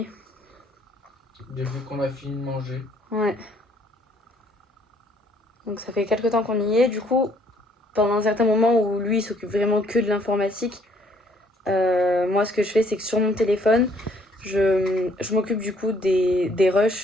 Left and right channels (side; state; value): both; normal; correlation 0.64